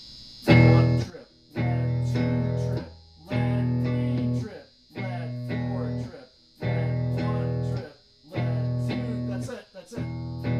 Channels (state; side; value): identical; both; correlation 1.00